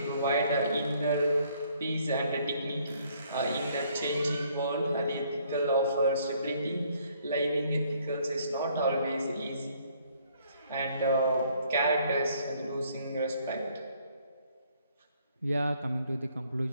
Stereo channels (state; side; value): inverted; both; correlation -0.64